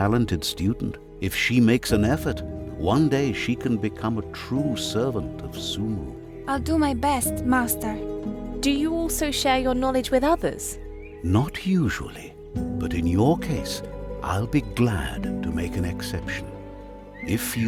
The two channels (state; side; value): identical; both; correlation 1.00